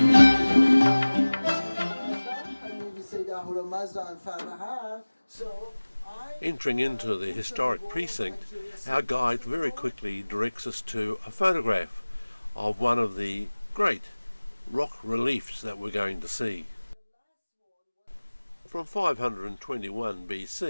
Entering into the historic precinct, our guide very quickly directs us to a photograph of one of the great rock reliefs that we're going to see. From 521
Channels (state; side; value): inverted; both; correlation -1.00